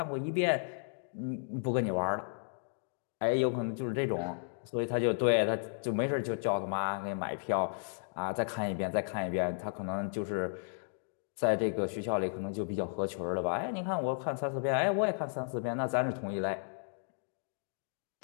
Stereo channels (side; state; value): right; silent; digital silence